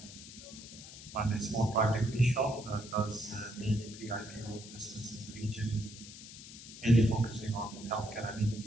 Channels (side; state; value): left; noise; hiss, 14 dB below the sound